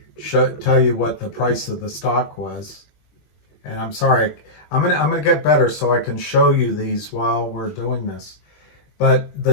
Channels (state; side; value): late; right; 21 ms